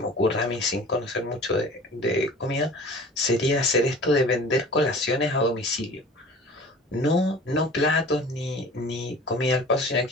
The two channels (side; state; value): both; normal; correlation 0.43